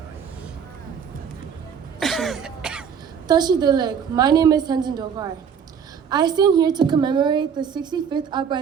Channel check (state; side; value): quieter; left; 7.3 dB